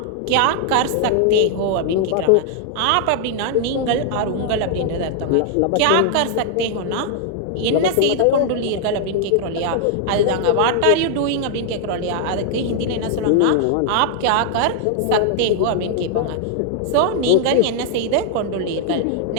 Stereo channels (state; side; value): different; both; correlation 0.00